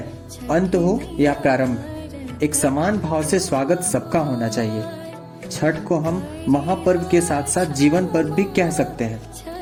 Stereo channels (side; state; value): both; identical; correlation 1.00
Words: अंत हो या प्रारंभ, एक समान भाव से स्वागत सबका होना चाहिए। छठ को हम महापर्व के साथ साथ जीवन पर्व भी कह सकते हैं,